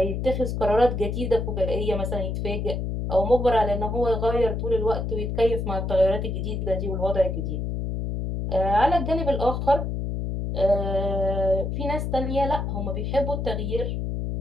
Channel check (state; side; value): noise; left; hum, 2 dB below the sound